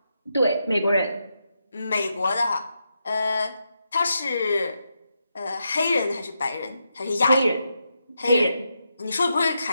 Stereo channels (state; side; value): inverted; both; correlation -0.84